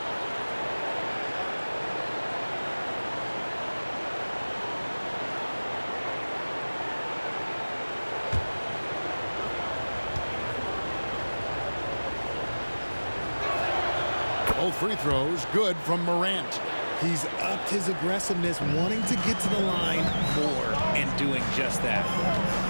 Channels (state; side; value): inverted; both; correlation -1.00